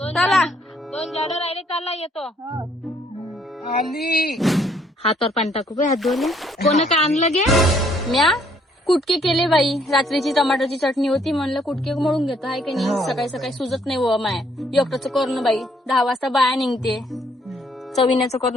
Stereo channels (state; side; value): normal; both; correlation 0.67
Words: चला. 2 झाडं राहिले चालला येतो. आली. हातावर पाणी टाकू काय हात धुवले. कोण काय आणलं गे? म्या कुटके केले बाई. रात्रीची टमाटरची चटणी होती म्हणलं कुटके मळून घेतो आहे की नाही. सकाळी सकाळी सुजत नाही व माय एकटंच करणं बाई. 10 वाजता बाया निघते. चविण्याचं